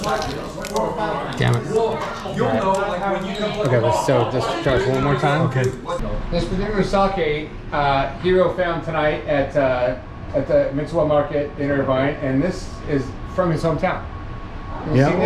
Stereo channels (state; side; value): identical; both; correlation 1.00